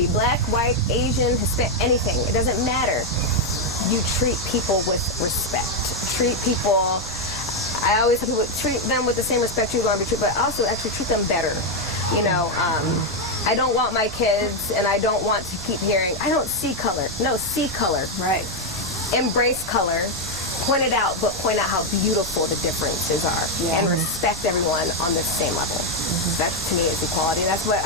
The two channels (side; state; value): both; normal; correlation 0.02